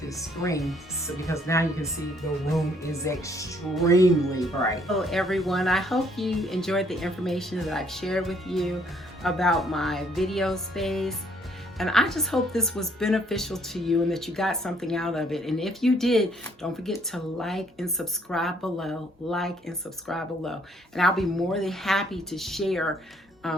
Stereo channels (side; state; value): both; normal; correlation 0.65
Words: screen, so because now you can see the room is extremely bright. Hello everyone, I hope you enjoyed the information that I've shared with you about my video space. And I just hope this was beneficial to you and that you got something out of it. And if you did, don't forget to like and subscribe below, And I'll be more than happy to share